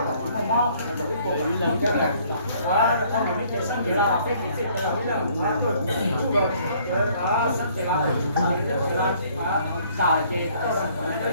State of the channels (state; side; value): inverted; both; correlation -0.60